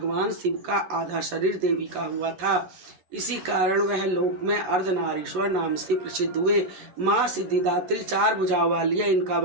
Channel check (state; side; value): late; left; 11 ms